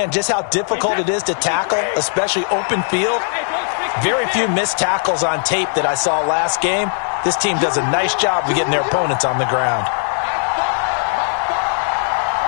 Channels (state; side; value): silent; right; 67 dB below the other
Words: just how difficult it is to tackle, especially open field. Very few missed tackles on tape that I saw last game. This team does a nice job of getting their opponents on the ground.